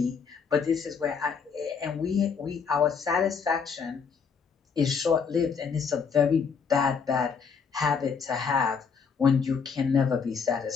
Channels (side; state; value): right; quieter; 6.0 dB